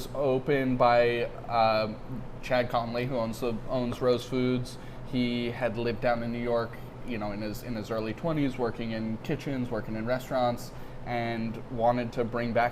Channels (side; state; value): both; identical; correlation 1.00